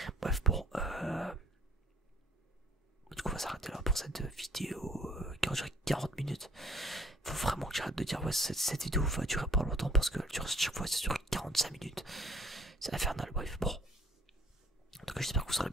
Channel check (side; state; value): both; normal; correlation 0.58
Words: Bref, bon. Du coup, on va s'arrêter là pour cette vidéo qui va durer 40 minutes. Faut vraiment que j'arrête de dire, ouais, cette vidéo va durer pas longtemps parce que chaque fois ça dure 45 minutes. C'est infernal, bref, bon. En tout cas, j'espère que vous aurez